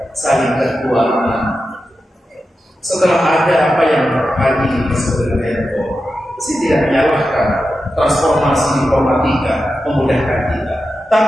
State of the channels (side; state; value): both; normal; correlation 0.91